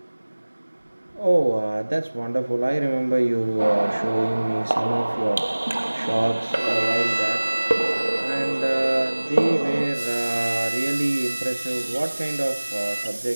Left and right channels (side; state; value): both; inverted; correlation -1.00